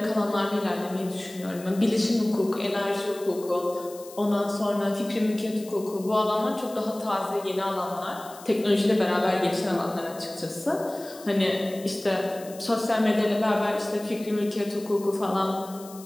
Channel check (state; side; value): noise; left; hiss, 19 dB below the sound